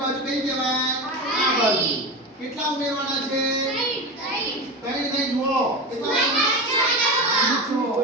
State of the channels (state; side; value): normal; both; correlation 0.23